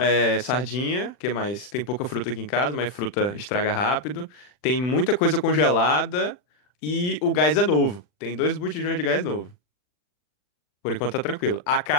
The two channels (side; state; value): right; late; 40 ms